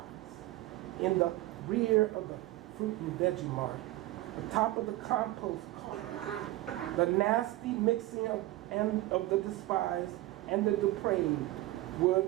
in the rear of the fruit and veggie mart, atop of the compost cart, The nasty mixing of the despised and the depraved would,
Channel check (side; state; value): left; quieter; 17.3 dB